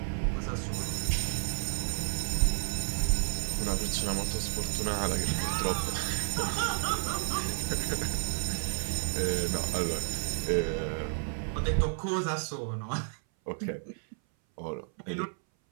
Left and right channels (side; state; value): left; silent; 57 dB below the other